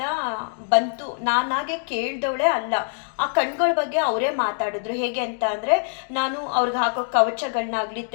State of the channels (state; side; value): silent; right; digital silence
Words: ಬಂತು, ನಾನಾಗೆ ಕೇಳ್ದವಳೆ ಅಲ್ಲ. ಆ ಕಣ್ಗಳ ಬಗ್ಗೆ ಅವರೇ ಮಾತಾಡಿದ್ರು. ಹೇಗೆ ಅಂತ ಅಂದರೆ, ನಾನು ಅವ್ರಿಗೆ ಹಾಕೋ ಕವಚಗಳನ್ನಾಗಲಿ